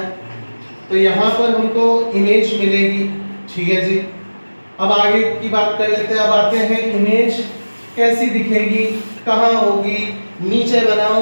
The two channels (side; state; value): both; inverted; correlation -1.00